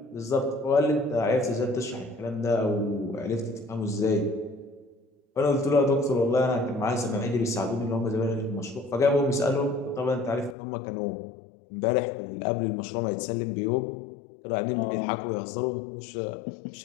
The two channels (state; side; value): drops out; right; at 10.6 s